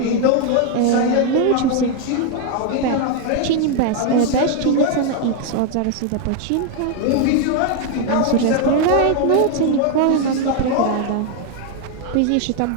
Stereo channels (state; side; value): different; both; correlation 0.01